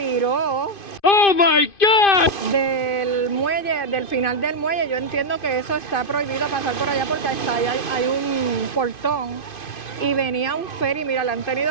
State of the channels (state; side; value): late; right; 2.5 ms